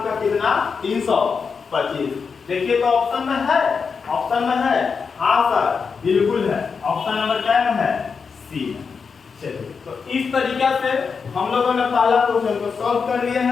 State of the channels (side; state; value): right; quieter; 5.5 dB